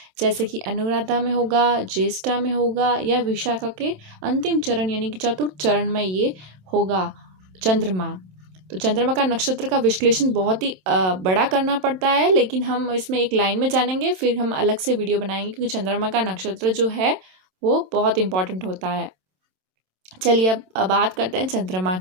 जैसे कि अनुराधा में होगा, ज्येष्ठा में होगा या विशाखा के अंतिम चरण यानी कि चतुर्थ चरण में ये होगा चंद्रमा। तो चंद्रमा का नक्षत्र का विश्लेषण बहुत ही बड़ा करना पड़ता है, लेकिन हम इसमें एक लाइन में जानेंगे, फिर हम अलग से वीडियो बनाएंगे क्योंकि चंद्रमा का नक्षत्र जो है वो बहुत इंपॉर्टेंट होता है। चलिए अब बात करते हैं चंद्रमा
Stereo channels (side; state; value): left; late; 27 ms